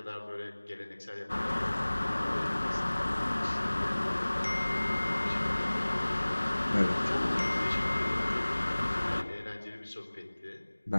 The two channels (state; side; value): inverted; both; correlation -1.00